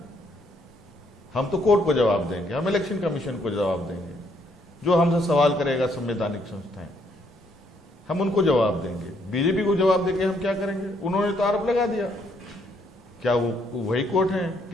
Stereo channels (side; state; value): both; normal; correlation 0.70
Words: हम तो कोर्ट को जवाब देंगे, हम इलेक्शन कमीशन को जवाब देंगे। जो हमसे सवाल करेगा संवैधानिक संस्थाएं, हम उनको जवाब देंगे। बीजेपी को जवाब देके हम क्या करेंगे? उन्होंने तो आरोप लगा दिया। क्या वो वही कोर्ट हैं?